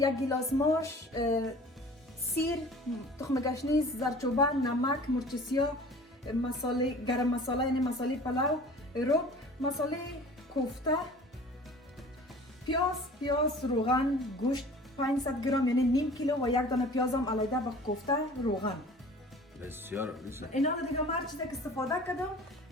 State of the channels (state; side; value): normal; both; correlation 0.45